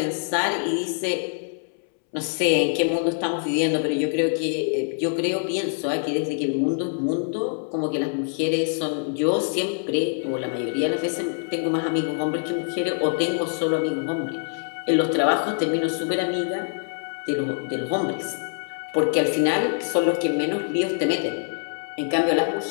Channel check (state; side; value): silent; right; 62 dB below the other